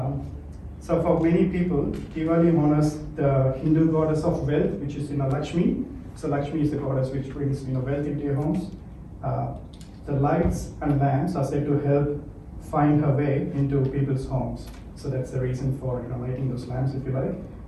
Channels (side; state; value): both; identical; correlation 1.00